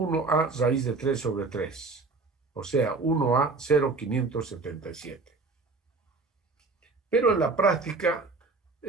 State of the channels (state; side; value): quieter; left; 3.9 dB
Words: raíz de 3 sobre 3, o sea, 1 a 0,577. Pero en la práctica,